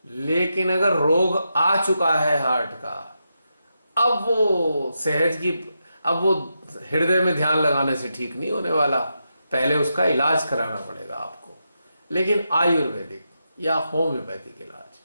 लेकिन अगर रोग आ चुका है हार्ट का, अब वो हृदय में ध्यान लगाने से ठीक नहीं होने वाला, पहले उसका इलाज कराना पड़ेगा आपको। लेकिन आयुर्वेदिक या होम्योपैथिक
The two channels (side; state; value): both; inverted; correlation -0.86